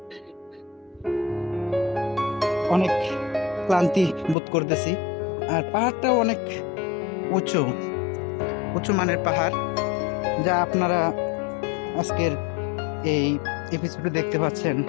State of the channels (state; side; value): drops out; right; at 4.4 s